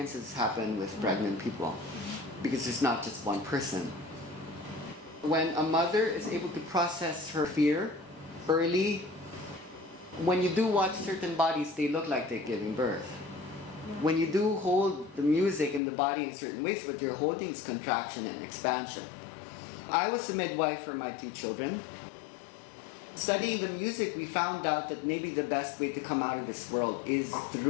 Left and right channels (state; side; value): drops out; right; at 15.8 s